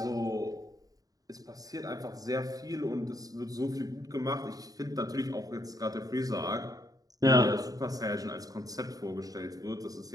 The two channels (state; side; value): late; left; 0.18 ms